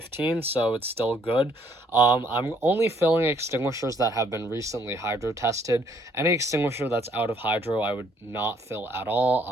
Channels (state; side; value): normal; both; correlation 0.66